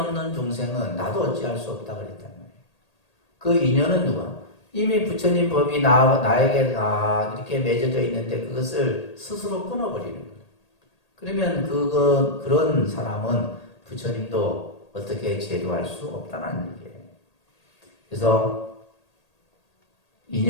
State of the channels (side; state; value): right; late; 1.8 ms